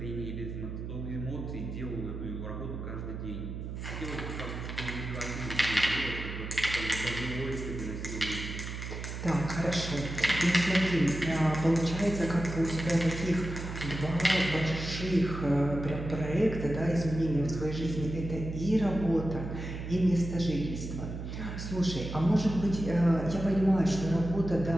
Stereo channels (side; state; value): right; noise; hum, 7 dB below the sound